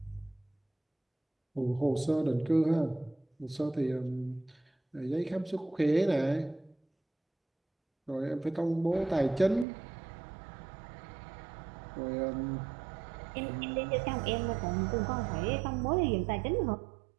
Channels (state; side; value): drops out; left; at 9.7 s